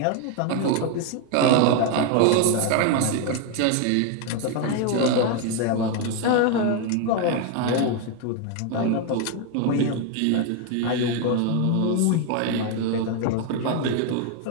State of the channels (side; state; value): both; different; correlation 0.01